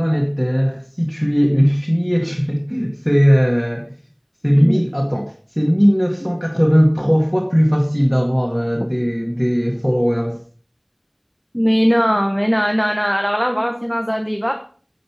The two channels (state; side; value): identical; both; correlation 1.00